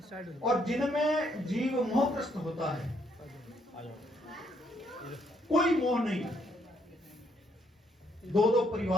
और जिनमें जीव मोहग्रस्त होता है, कोई मोह नहीं। दो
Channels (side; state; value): both; normal; correlation 0.71